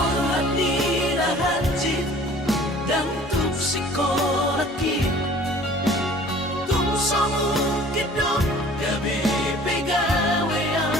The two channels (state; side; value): normal; both; correlation 0.49